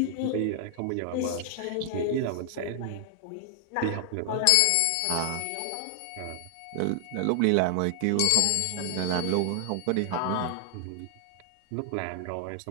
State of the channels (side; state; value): both; different; correlation 0.00